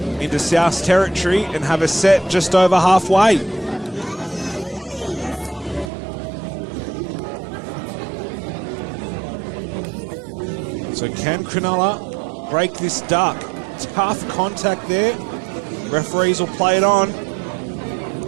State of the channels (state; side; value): drops out; left; at 5.9 s